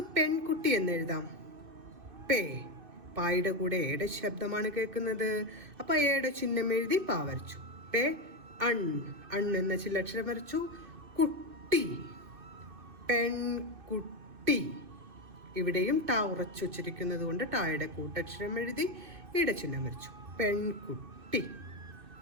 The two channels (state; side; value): late; left; 2.6 ms